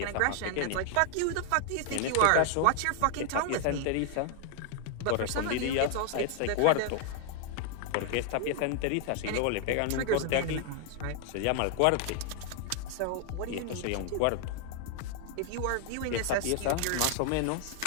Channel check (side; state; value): both; different; correlation 0.00